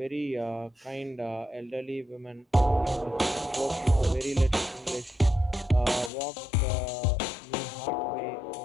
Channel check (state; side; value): drops out; right; at 6.1 s